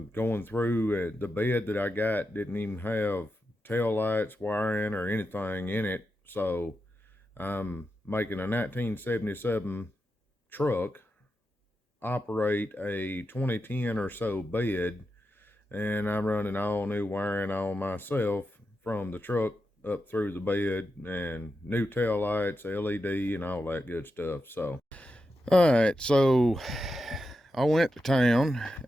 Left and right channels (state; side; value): normal; both; correlation 0.88